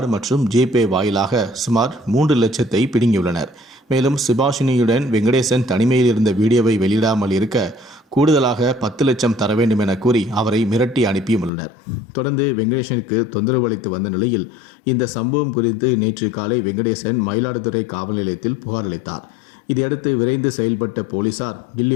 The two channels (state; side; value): drops out; right; at 11.5 s